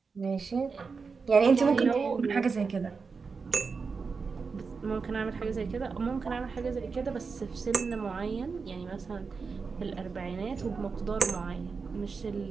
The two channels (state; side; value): quieter; left; 5.0 dB